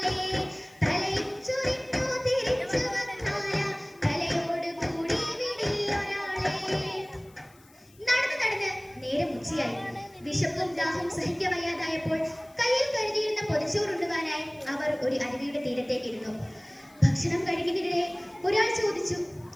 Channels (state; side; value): noise; left; hiss, 28 dB below the sound